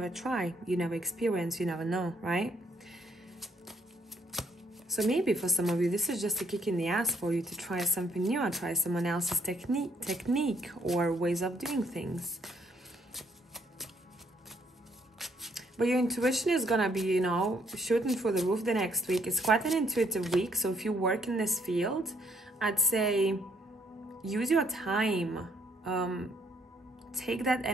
try, you never experience, you never know, right? So maybe for some of you, this is just a kick in the ass for you to try something new, or try someone else's technique or ways of doing things. But your intuition is gonna be, you know, shooting through the roof the next week. It's quite an intuitive week. So if you work in this field, I'd say use your time. Take that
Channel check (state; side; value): normal; both; correlation 0.70